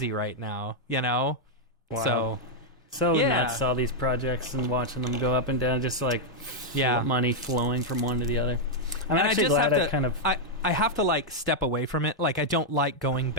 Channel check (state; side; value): normal; both; correlation -0.02